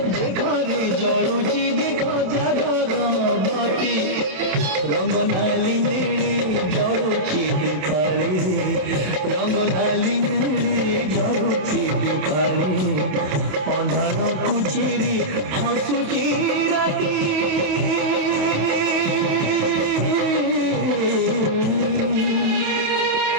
देखो रे जड़ुची देखो जागरबती रंग नाली नीली जड़ुची दीपाली रंग नाली नीली जड़ुची दीपाली अंधार कुचेरी हसुची राती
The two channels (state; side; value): late; left; 27 ms